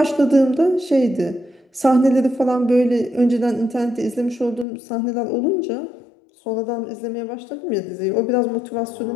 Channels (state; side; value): drops out; right; at 4.7 s